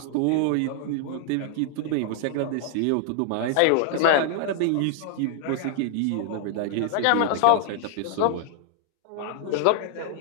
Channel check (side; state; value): both; different; correlation 0.00